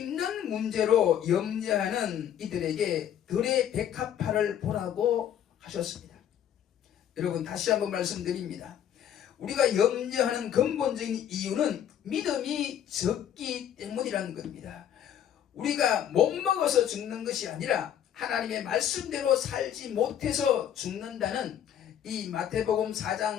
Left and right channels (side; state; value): right; quieter; 9.9 dB